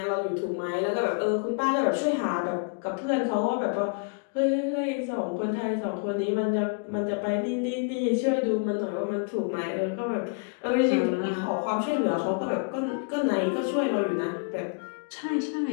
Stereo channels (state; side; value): quieter; right; 36.3 dB